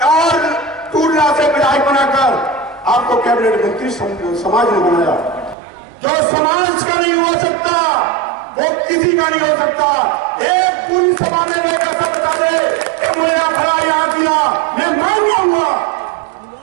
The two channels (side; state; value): left; drops out; at 5.6 s